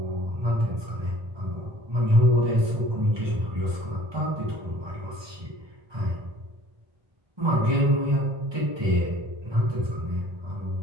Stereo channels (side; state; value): left; late; 1.2 ms